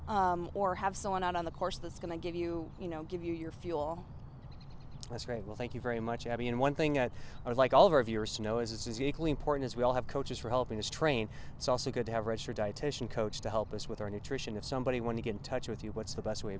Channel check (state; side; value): identical; both; correlation 1.00